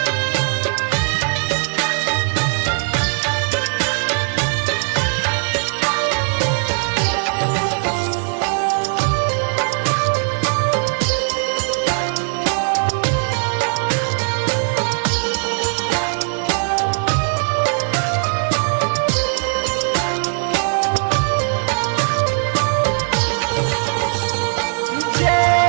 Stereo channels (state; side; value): silent; left; digital silence